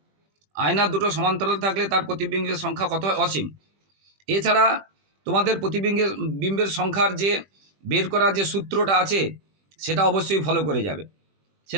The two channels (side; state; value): left; late; 20 ms